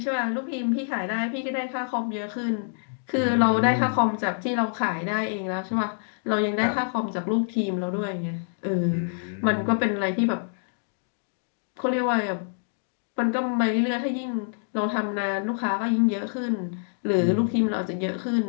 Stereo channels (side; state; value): right; silent; digital silence